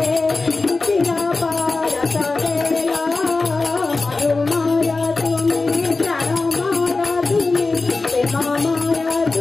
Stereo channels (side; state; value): right; quieter; 3.7 dB